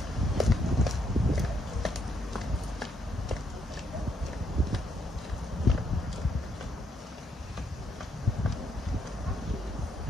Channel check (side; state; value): both; normal; correlation 0.74